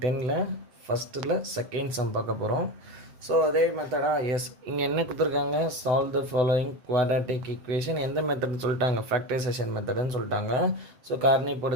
ஃபஸ்ட்டில் செகண்ட் சம் பார்க்க போகிறோம். ஸோ அதே மெத்தடாக எஸ் இங்கே என்ன கொடுத்துருக்காங்க, solve the following quadratic equation. எந்த மெத்தட்னு சொல்லிட்டாங்க, ஃபேக்டரைசேஷன் மெத்தடுன்னு சொல்லிட்டாங்க. ஸோ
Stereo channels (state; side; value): late; left; 7.6 ms